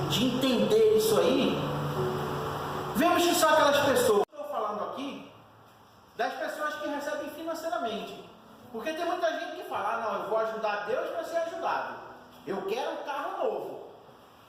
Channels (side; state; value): both; identical; correlation 1.00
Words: de entender isso aí, vemos que são aquelas pessoas. Estou falando aqui das pessoas que recebem financeiramente, porque tem muita gente que fala, não, eu vou ajudar Deus para ser ajudado. Eu quero um carro novo,